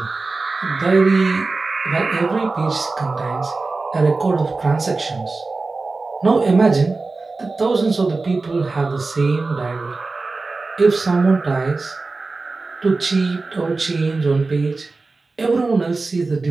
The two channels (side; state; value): left; quieter; 3.7 dB